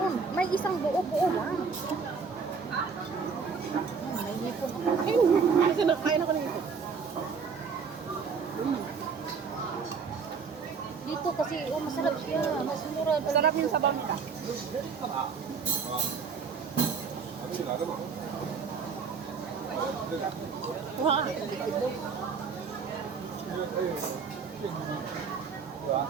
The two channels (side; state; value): left; quieter; 5.6 dB